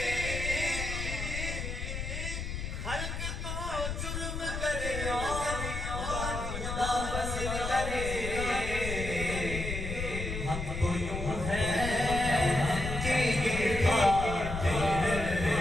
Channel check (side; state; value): left; noise; rumble, 5 dB below the sound